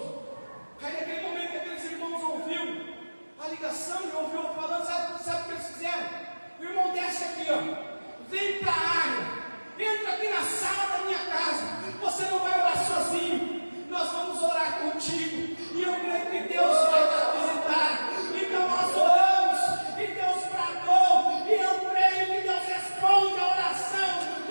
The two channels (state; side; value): inverted; both; correlation -1.00